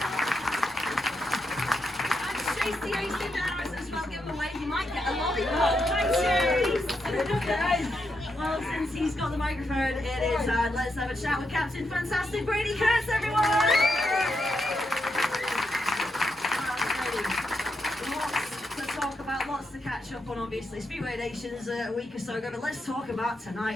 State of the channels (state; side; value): normal; both; correlation 0.83